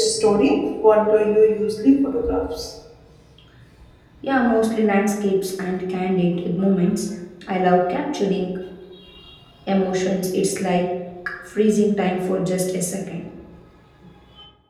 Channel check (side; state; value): both; identical; correlation 1.00